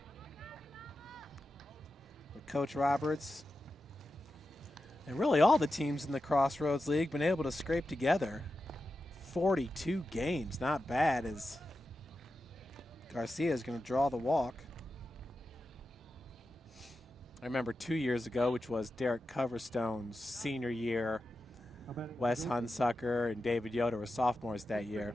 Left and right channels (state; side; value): normal; both; correlation 0.91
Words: But Coach Roberts and really all the teams in the Crossroads League been able to scrape together 42 games. Not bad, as Garcia is going to draw the walk. I remember 2 years ago, which was Derek Coverstone's senior year. Now batting Wes Goshen. Hunsucker and David Yoder were sophomores that year.